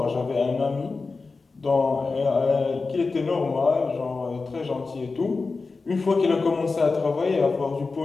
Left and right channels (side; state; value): right; quieter; 4.1 dB